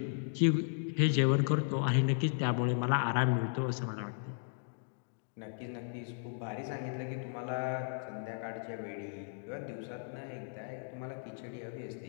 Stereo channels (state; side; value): silent; right; digital silence